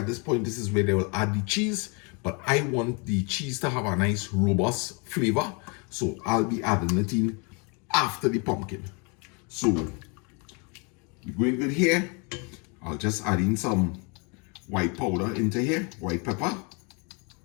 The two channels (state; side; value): quieter; right; 32.8 dB